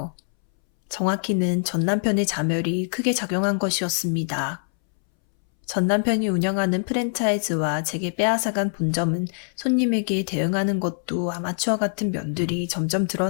정확히는 전 남편의 자멸이 크게 작용한 것이었습니다. 전 남편이 운영하는 프랜차이즈와 제게 빼앗아간 본점은 손님에게 대응하는 것도 아마추어 같은 면들이 점점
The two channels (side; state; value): right; silent; 63 dB below the other